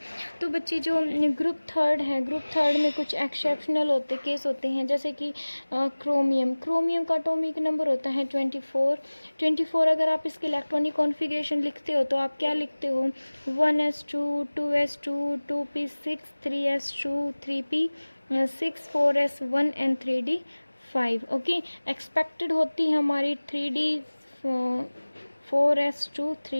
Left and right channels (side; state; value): both; inverted; correlation -1.00